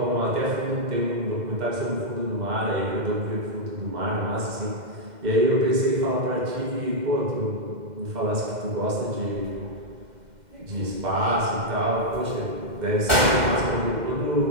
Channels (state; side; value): late; left; 2.1 ms